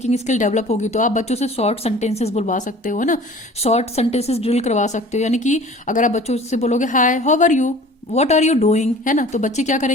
स्किल डेवलप होगी, तो आप बच्चों से शॉर्ट सेंटेंसेस बुलवा सकते हो ना, शॉर्ट सेंटेंसेस ड्रिल करवा सकते हो। यानी कि अगर आप बच्चों से बोलोगे hi, how are you, what are you doing, है ना, तो बच्चे क्या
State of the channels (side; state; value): both; normal; correlation 0.46